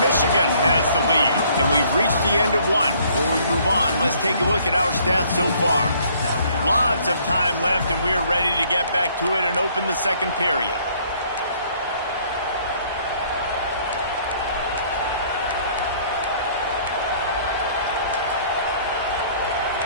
has the lead. And we've reached the end of one. Before we move on, let's take a look at our stats so far. Lots of time left, and we're ready to get back to it and open the second period.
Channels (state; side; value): inverted; both; correlation -0.61